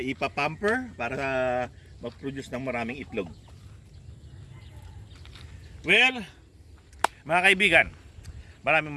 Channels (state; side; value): identical; both; correlation 1.00